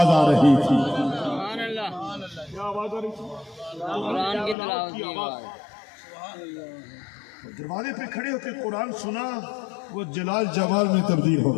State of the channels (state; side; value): drops out; right; at 4.5 s